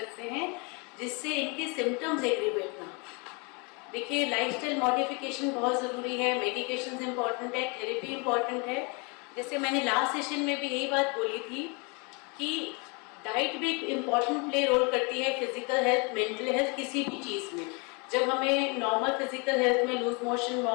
हैं, जिससे इनके सिम्टम्स एग्रीवेट ना। देखिए, लाइफस्टाइल मॉडिफिकेशन बहुत ज़रूरी है, मेडिकेशन इम्पॉर्टेंट है, थेरेपी इम्पॉर्टेंट है। जैसे मैंने लास्ट सेशन में भी यही बात बोली थी कि डाइट भी एक इम्पॉर्टेंट प्ले रोल करती है फिजिकल हेल्थ, मेंटल हेल्थ, किसी भी चीज़ में। जब हमें नॉर्मल फिजिकल हेल्थ में लूज मोशन,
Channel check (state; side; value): quieter; right; 31.8 dB